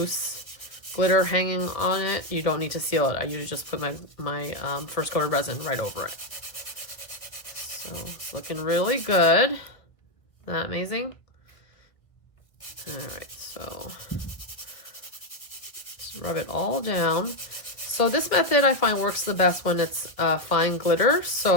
glitter hanging on it. You don't need to seal it. I usually just put my first coat of resin right over it. So it's looking really good. Isn't that amazing? All right, so just rub it all down. So this method I find works the best when it's fine glitter.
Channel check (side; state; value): right; late; 1.3 ms